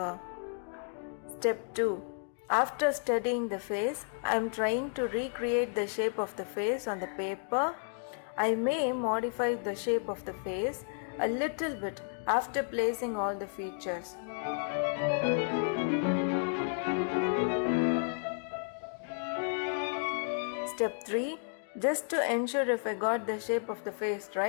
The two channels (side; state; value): right; silent; 56 dB below the other